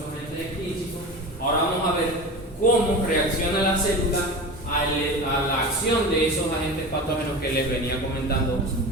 agentes extrínsecos. Ahora vamos a ver cómo reacciona la célula a la acción de esos agentes patógenos que les venía comentando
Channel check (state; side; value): normal; both; correlation 0.30